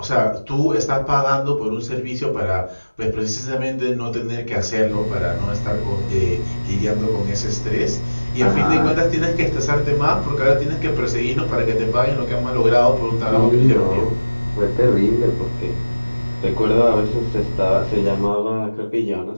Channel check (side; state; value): both; inverted; correlation -1.00